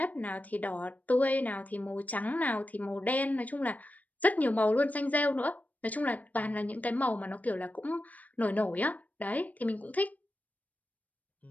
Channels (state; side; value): late; right; 0.075 ms